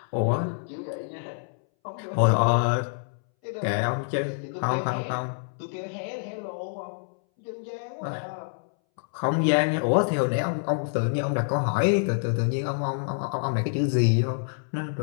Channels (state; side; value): silent; right; 60 dB below the other